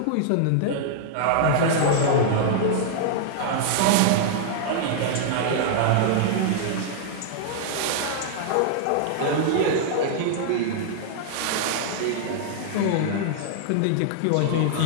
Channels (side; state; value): both; different; correlation -0.01